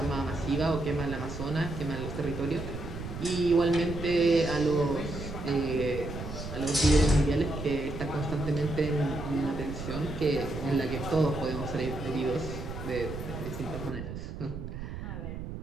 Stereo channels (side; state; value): right; noise; rumble, 8 dB below the sound